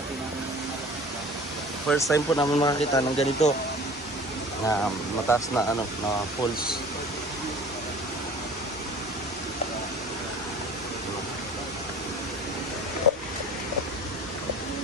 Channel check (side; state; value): both; normal; correlation 0.44